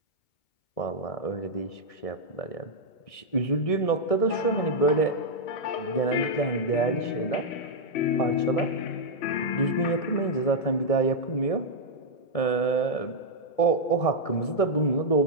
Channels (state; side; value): late; right; 1.6 ms